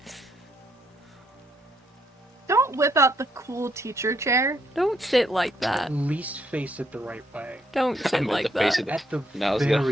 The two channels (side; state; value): both; normal; correlation 0.73